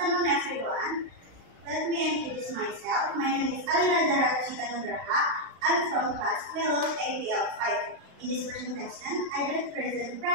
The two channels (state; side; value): late; left; 35 ms